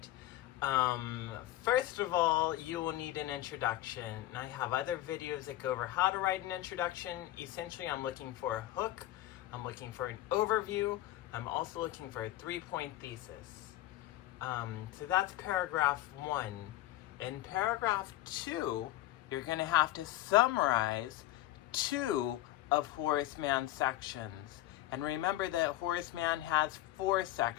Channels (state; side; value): quieter; right; 15.3 dB